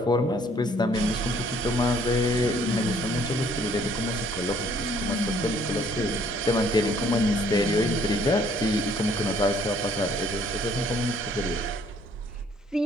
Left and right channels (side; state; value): both; normal; correlation 0.61